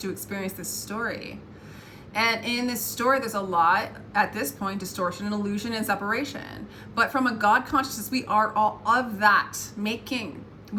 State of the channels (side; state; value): both; identical; correlation 1.00